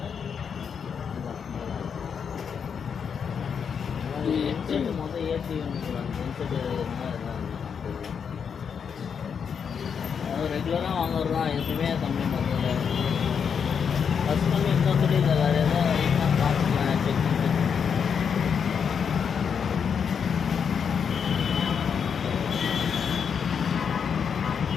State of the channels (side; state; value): right; quieter; 6.9 dB